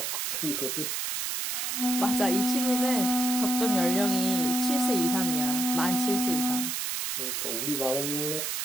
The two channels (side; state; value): right; noise; hiss, 1 dB below the sound